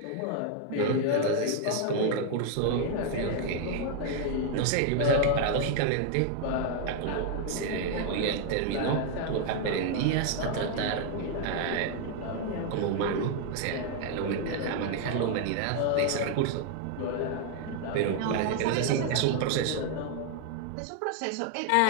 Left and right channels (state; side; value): different; both; correlation 0.00